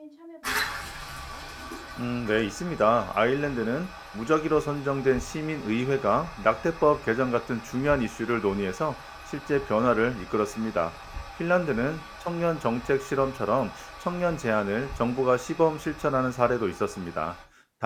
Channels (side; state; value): both; identical; correlation 1.00